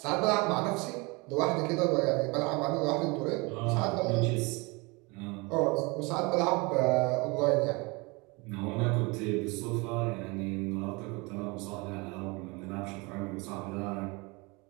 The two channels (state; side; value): quieter; left; 26.8 dB